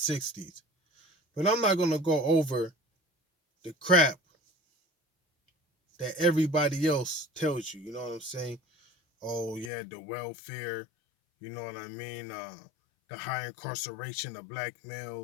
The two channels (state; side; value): drops out; right; at 9.7 s